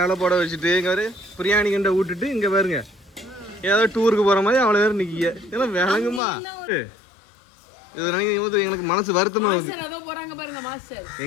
போட வச்சுட்டு இங்க பாரு பிரியாணி கிண்ட விட்டுட்டு இங்க பாருங்க ஏதோ டூருக்கு போற மாதிரி அவ்வளவு பேர் நிக்கிய. இதெல்லாம் விளங்குமா? இது நினைக்கும் போது எனக்கு மனசு வருத்தமா வருது. போறாங்க பாருங்க மாஸ்டர்.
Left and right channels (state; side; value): drops out; right; at 6.2 s